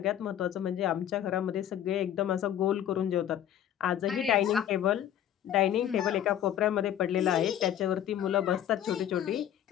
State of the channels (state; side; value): quieter; right; 10.7 dB